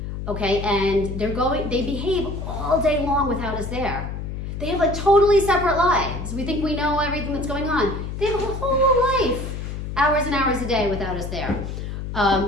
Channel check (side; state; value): left; noise; hum, 6 dB below the sound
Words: okay? And they behave all day long without us there. They have like totally separate lives. We think we know everything that's going on. They have a whole life, hours and hours a day without us there.